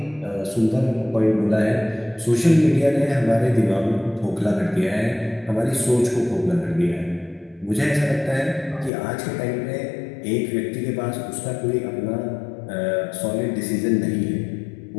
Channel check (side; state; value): right; drops out; at 8.9 s